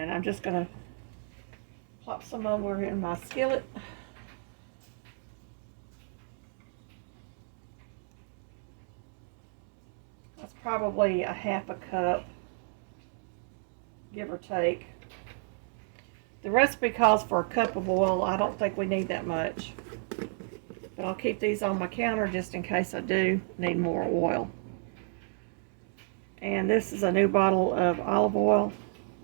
I'm just going to plop some over in my skillet. That's probably a half a cup, give or take. The recipe calls for a cup of oil. I don't think we need that much. But I'll keep these on my counter just in case I do need more oil. And this is a new bottle of olive oil.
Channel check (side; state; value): left; silent; 57 dB below the other